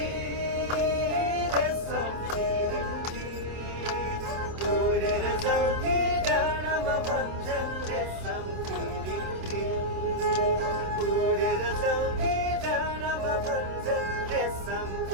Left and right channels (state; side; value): late; left; 27 ms